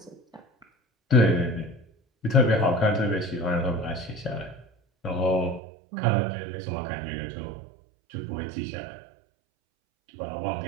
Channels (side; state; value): left; drops out; at 5.6 s